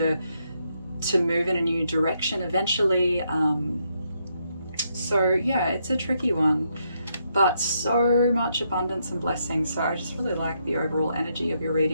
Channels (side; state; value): both; inverted; correlation -0.78